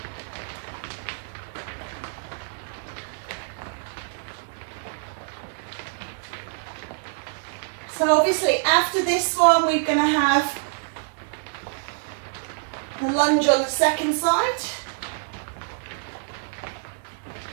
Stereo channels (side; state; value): left; silent; 61 dB below the other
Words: So obviously after this one we're going to have the lunge on the second side.